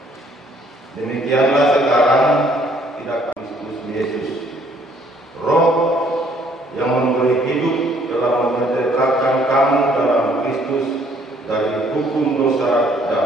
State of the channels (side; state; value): both; normal; correlation 0.63